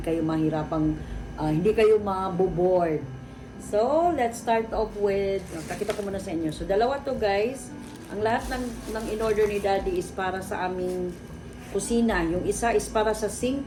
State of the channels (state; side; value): identical; both; correlation 1.00